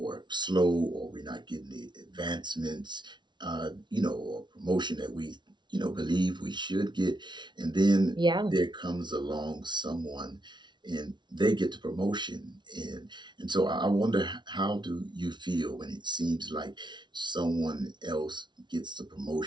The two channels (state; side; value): late; left; 0.22 ms